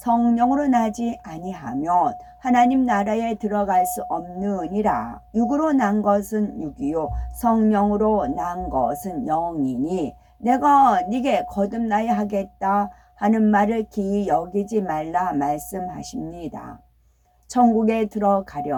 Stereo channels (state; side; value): identical; both; correlation 1.00